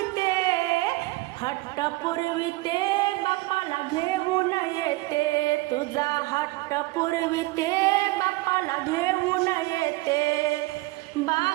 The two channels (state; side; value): quieter; left; 21.2 dB